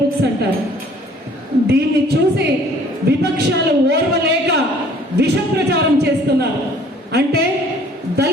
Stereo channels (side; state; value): both; normal; correlation 0.55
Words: బుక్స్ అంటారు. దీన్ని చూసి విపక్షాలు ఓర్వలేక విష ప్రచారం చేస్తున్నారు. అంటే